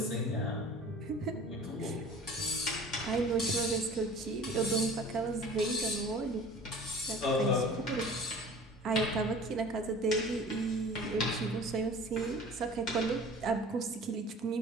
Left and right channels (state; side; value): normal; both; correlation 0.44